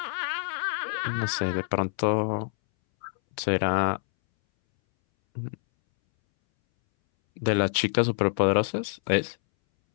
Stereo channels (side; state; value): right; silent; 61 dB below the other